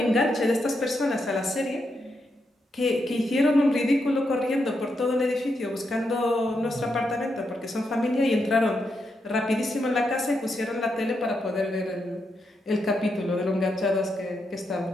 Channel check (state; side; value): normal; both; correlation 0.83